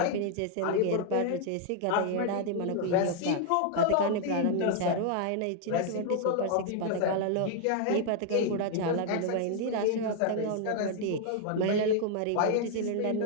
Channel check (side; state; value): both; different; correlation 0.00